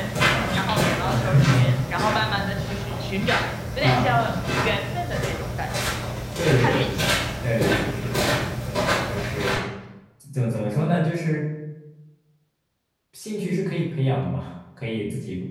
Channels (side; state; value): both; identical; correlation 1.00